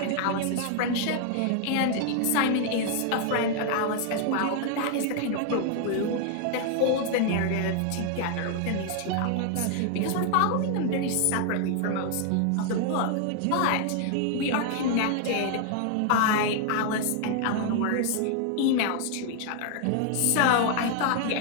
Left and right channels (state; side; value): different; both; correlation 0.00